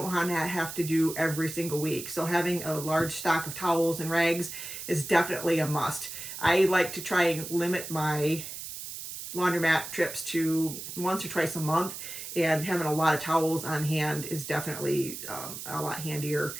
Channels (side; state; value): right; noise; hiss, 9 dB below the sound